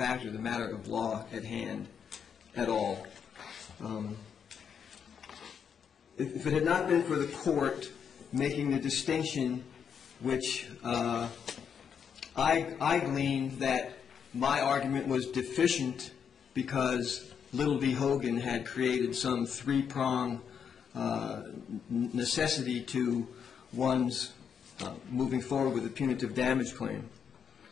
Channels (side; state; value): right; quieter; 7.3 dB